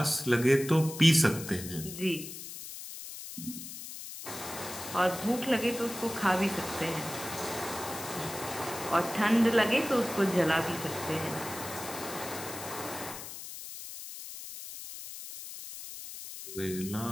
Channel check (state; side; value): noise; left; hiss, 10 dB below the sound